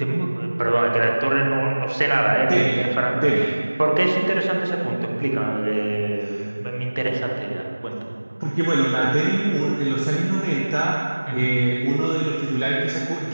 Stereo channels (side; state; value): both; inverted; correlation -1.00